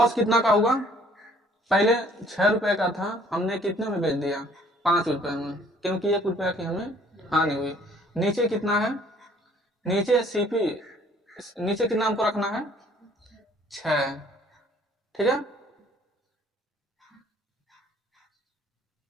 कितना का होगा, पहले 6 रुपए का था, हमने कितने में बेच दिया, 5 रुपए में, क्योंकि 1 रुपया की हमें हानि हुई। नीचे कितना है, नीचे सीपी, नीचे कितना हमको रखना है, 6। ठीक है,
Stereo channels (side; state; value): both; normal; correlation 0.58